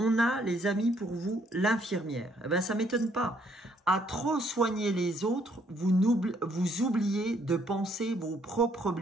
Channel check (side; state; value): both; normal; correlation 0.68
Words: a, les amis, pour vous, l'infirmière. Eh bien, ça ne m'étonne pas. À trop soigner les autres, vous oubliez de penser vos propres